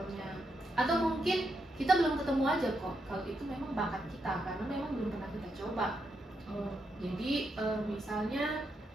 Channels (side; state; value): both; normal; correlation 0.82